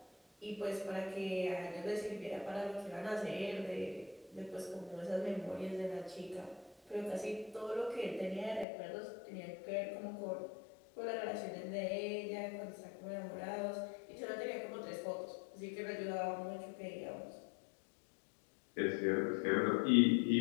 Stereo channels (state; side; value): drops out; right; at 8.7 s